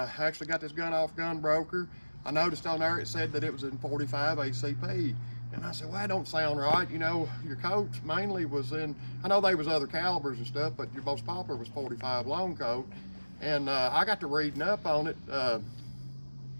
actually got this gun off Gun Broker. I noticed on there it said that it was in 45 ACP. And I said, well, that don't sound right. You know, your Colts mainly was in, I know there was other calibers and stuff, but your most popular was 45 long Colt. And I got to reading up on it.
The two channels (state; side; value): inverted; both; correlation -1.00